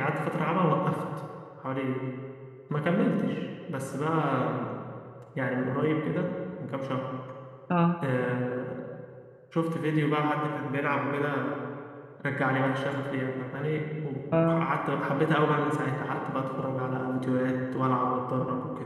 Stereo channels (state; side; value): identical; both; correlation 1.00